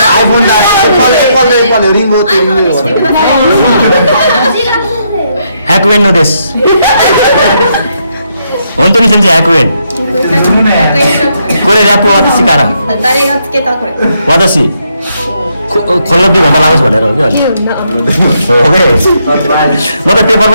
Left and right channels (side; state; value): both; inverted; correlation -0.77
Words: iPhone だAppleリモートリモート100円のです本当に先生100円これラップ私から誰がつけたこれ私컬러비 भन्दा लाग्छ भनेर हो कि अहिले हो के म त पेपर